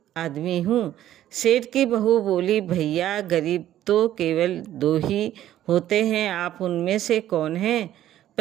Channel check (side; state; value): left; quieter; 12.6 dB